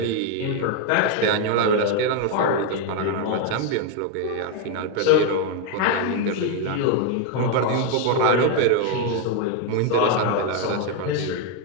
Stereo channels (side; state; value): both; different; correlation 0.01